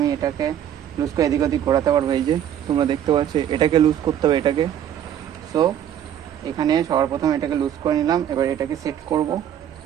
এটাকে লুজ করে এদিক ওদিক ঘোরাতে পারবো। এই যে তোমরা দেখতে পাচ্ছ, এটাকে লুজ করতে হবে এটাকে। সো এখানে সবার প্রথমে এটাকে লুজ করে নিলাম, এবার এটাকে সেট করব।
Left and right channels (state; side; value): quieter; left; 10.2 dB